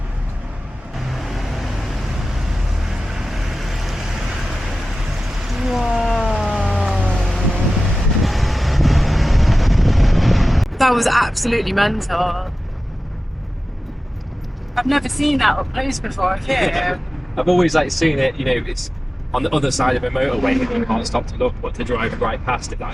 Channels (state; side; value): normal; both; correlation 0.95